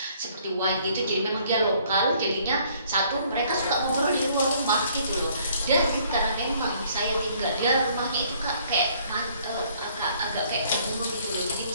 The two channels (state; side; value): inverted; both; correlation -0.62